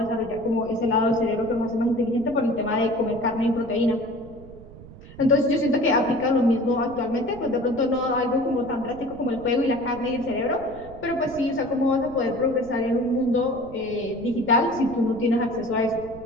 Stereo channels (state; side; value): noise; right; rumble, 18 dB below the sound